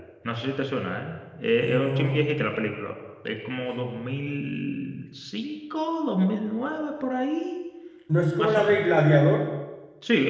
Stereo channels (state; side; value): identical; both; correlation 1.00